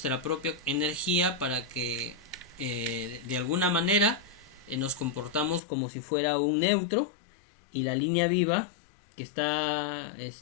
propia energía para que de alguna manera nos comportamos como si fuera un neutro y la línea viva que está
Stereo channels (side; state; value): right; drops out; at 5.6 s